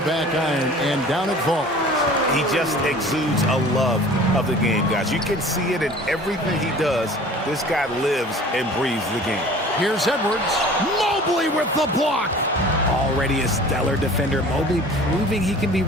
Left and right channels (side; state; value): both; normal; correlation 0.45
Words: back iron, and down it falls. He just exudes a love of the game, guys. You can see it in everything he does. This guy lives and breathes the game. Here's Edwards. Mobley with the block. Already a stellar defender, Mobley proving he can be